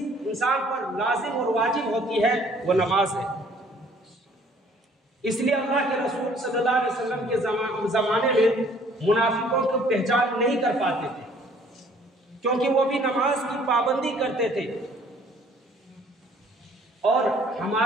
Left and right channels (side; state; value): both; normal; correlation 0.58